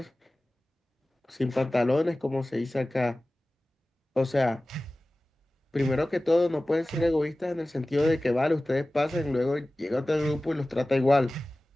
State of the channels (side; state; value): both; normal; correlation 0.97